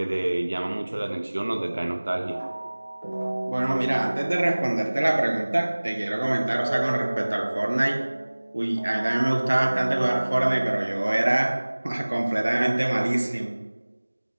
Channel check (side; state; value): both; inverted; correlation -1.00